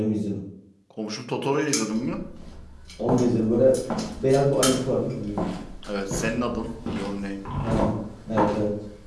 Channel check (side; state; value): both; identical; correlation 1.00